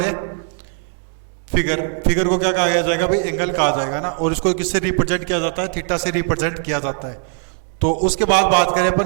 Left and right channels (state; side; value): silent; left; 57 dB below the other